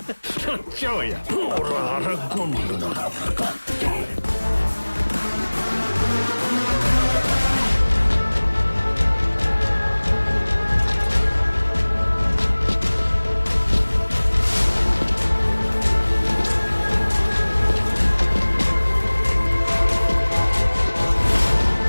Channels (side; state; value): both; inverted; correlation -1.00